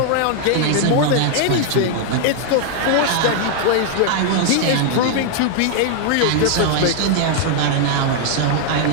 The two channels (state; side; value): different; both; correlation 0.00